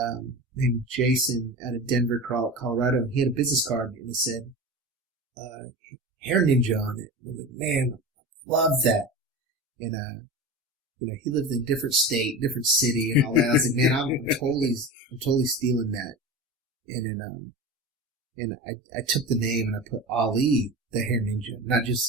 named Jason out of Denver, Colorado. He had a business card and it said, Hair Ninja on it. I was like, man, I love that. And, he lived in a different state, different city and all that. I was like, man, I'm totally stealing that. And I took the name and I put Ali, the Hair Ninja, not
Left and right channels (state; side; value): normal; both; correlation 0.28